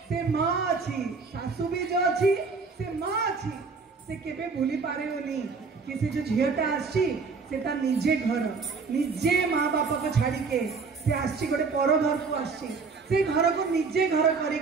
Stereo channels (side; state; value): left; quieter; 4.7 dB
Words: से माँ अच्छी, सासू भी जो अच्छी से माँ अच्छी, से केबे भूली पारे होनी कि से जो झीलटा आसी से ता निजे घर निजे माँ बापा को छाड़ी के से आसी गोटे पर घर को आसी, से घर को निजे घर